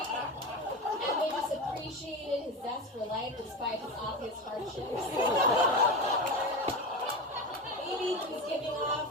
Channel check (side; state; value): both; normal; correlation 0.22